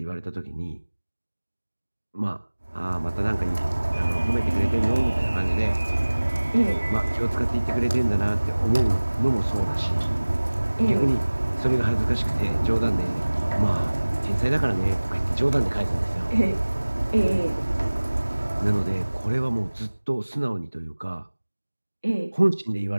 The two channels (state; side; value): inverted; both; correlation -1.00